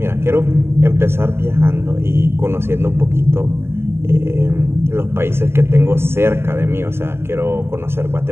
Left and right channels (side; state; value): left; late; 0.12 ms